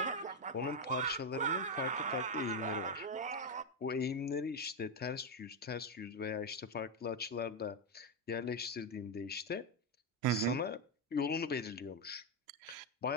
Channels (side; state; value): both; normal; correlation 0.05